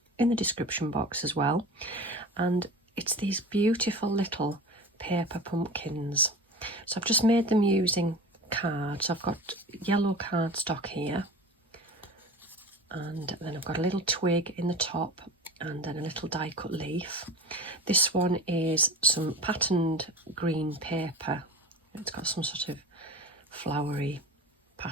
in the description box as well. And it's these beautiful little paper pumpkins. So I've just made them using cards. I've got yellow cardstock here, and then I've got a little twig in the top and then a little die cut leaf. This one is some patterned green paper. It's got some sort of flowery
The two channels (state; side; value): normal; both; correlation 0.35